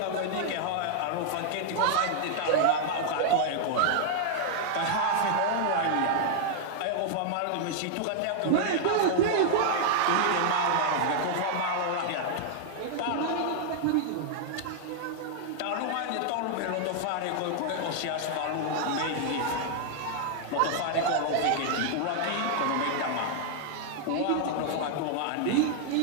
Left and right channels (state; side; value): different; both; correlation -0.01